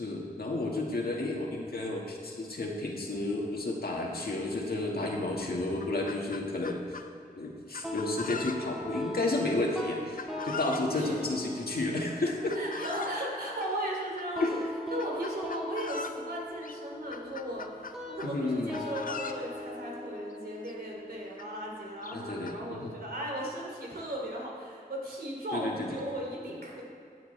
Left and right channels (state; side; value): normal; both; correlation 0.51